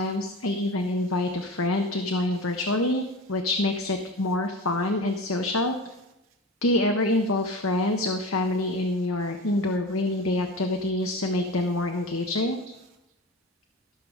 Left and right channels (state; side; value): normal; both; correlation 0.31